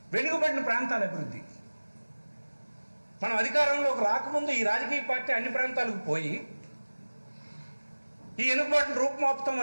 వెనుకబడిన ప్రాంతాల అభివృద్ధి, మనం అధికారంలోకి రాకముందు ఈ రాజకీయ పార్టీ అన్ని ప్రాంతాలకు పోయి ఈ వెనుకబాటును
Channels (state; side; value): inverted; both; correlation -1.00